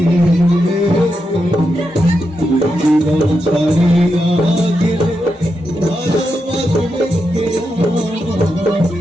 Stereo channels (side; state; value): both; normal; correlation 0.86